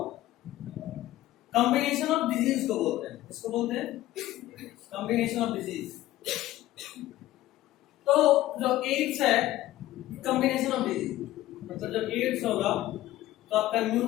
combination of disease को बोलते हैं, इसको बोलते हैं कॉम्बिनेशन ऑफ डिजीज। तो जो एड्स है कॉम्बिनेशन ऑफ डिजीज, मतलब जब एड्स होगा तो आपका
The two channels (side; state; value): right; quieter; 15.4 dB